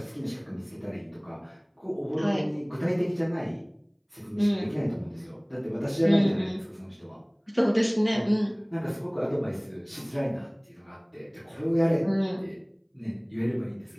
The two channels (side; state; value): both; identical; correlation 1.00